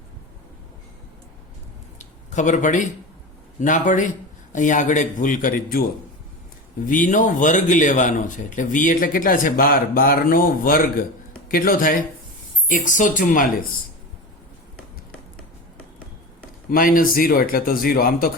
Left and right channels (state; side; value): normal; both; correlation 0.26